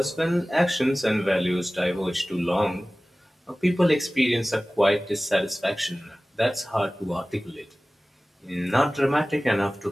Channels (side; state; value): both; normal; correlation 0.98